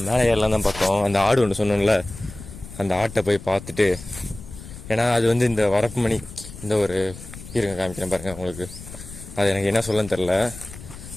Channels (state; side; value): noise; left; rumble, 15 dB below the sound